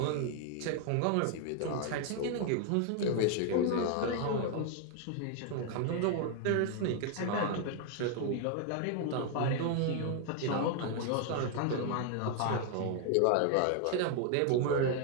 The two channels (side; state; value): both; different; correlation 0.00